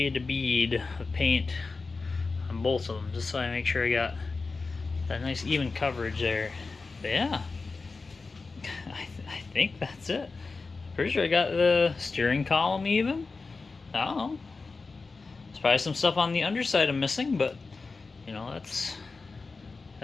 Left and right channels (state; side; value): quieter; right; 4.1 dB